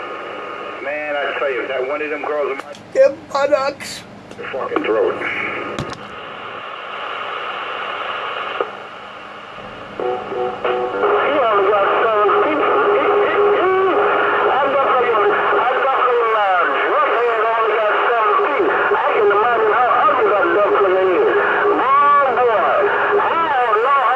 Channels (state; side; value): identical; both; correlation 1.00